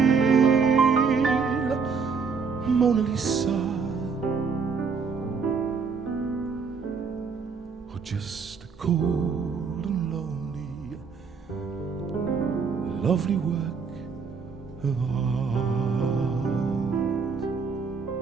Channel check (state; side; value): quieter; left; 5.4 dB